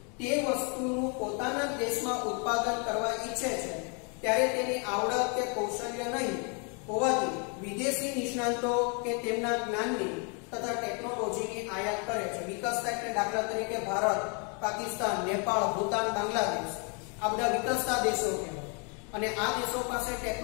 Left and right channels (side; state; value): right; quieter; 36.1 dB